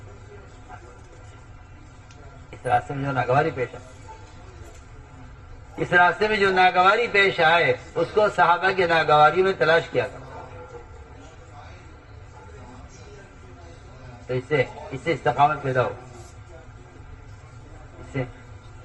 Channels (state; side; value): identical; both; correlation 1.00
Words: اس راستے میں جو ناگواری پیش آئے، اس راستے میں جو ناگواری پیش آئے اس کو صحابہ کی ناگواری میں تلاش کیا کرو، تو اس سے استقامت پیدا ہوگی، اس سے